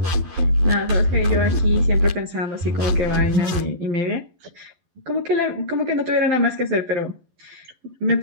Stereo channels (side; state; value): left; late; 11 ms